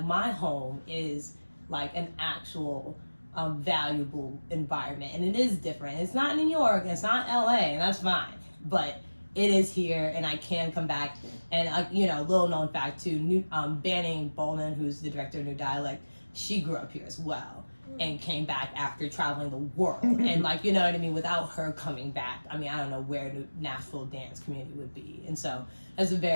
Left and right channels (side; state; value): both; inverted; correlation -1.00